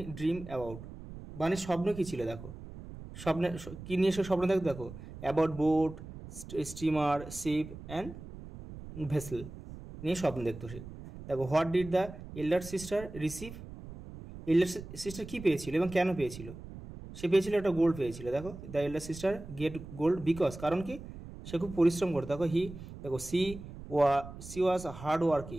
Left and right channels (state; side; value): noise; right; rumble, 13 dB below the sound